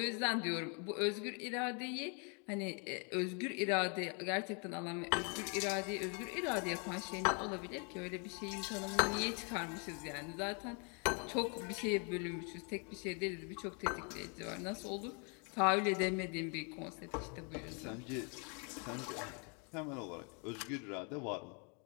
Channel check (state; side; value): quieter; right; 36.8 dB